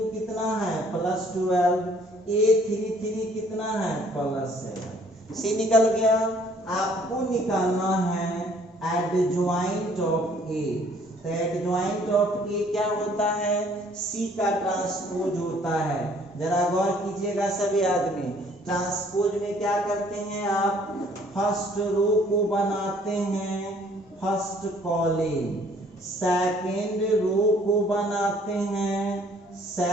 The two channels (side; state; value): both; normal; correlation 0.60